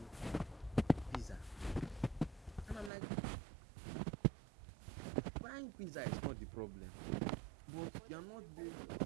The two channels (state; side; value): drops out; left; at 2.9 s